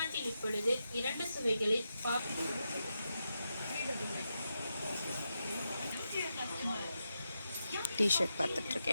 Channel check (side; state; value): both; inverted; correlation -0.87